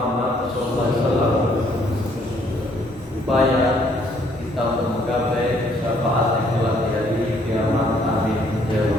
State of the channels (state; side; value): normal; both; correlation 0.65